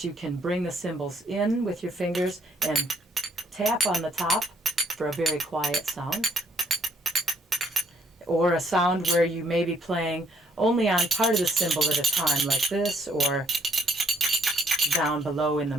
you can bring the cymbals in with your fingers and tap on the top for a very quiet sound. Or a sound where you may be playing only on part of the cymbal at a time, like this, or down below in the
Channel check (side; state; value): both; normal; correlation 0.67